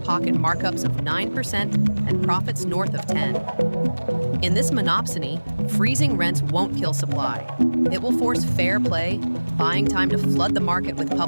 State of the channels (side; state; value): both; inverted; correlation -1.00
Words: markups of 9% and profits north of 10%. In this monopsony, freezing rents won't kill supply. It will force fair play, buying time to flood the market with